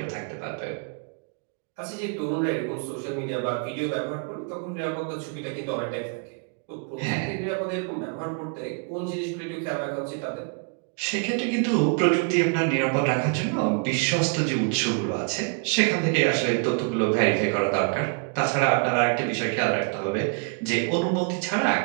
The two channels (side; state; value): left; quieter; 38.2 dB